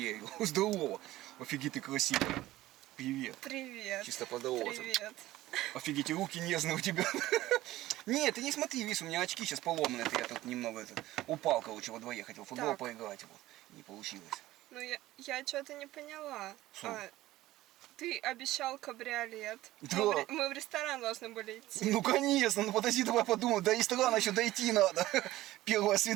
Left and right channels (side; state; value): left; quieter; 16.2 dB